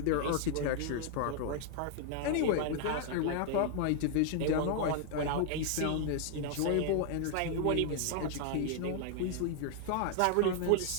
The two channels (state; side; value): different; both; correlation 0.00